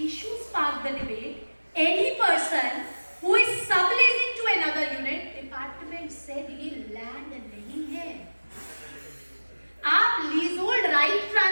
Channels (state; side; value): inverted; both; correlation -1.00